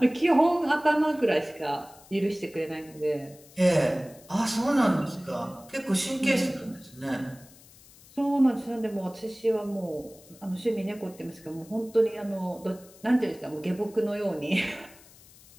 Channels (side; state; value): left; noise; hiss, 24 dB below the sound